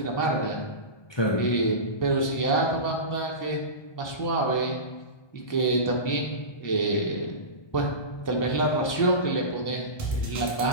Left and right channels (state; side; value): late; right; 1.2 ms